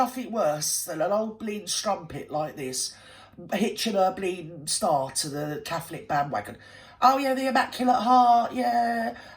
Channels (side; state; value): both; identical; correlation 1.00